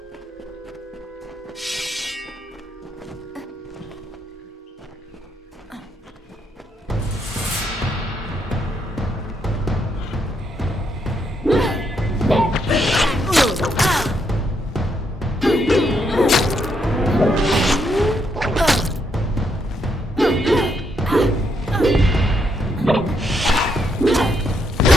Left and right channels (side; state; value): both; normal; correlation 0.77